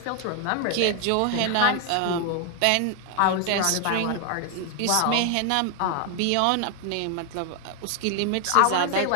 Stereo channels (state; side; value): different; both; correlation 0.00